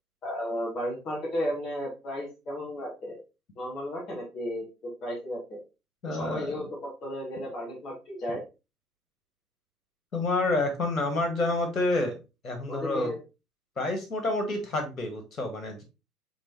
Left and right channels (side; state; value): both; normal; correlation 0.62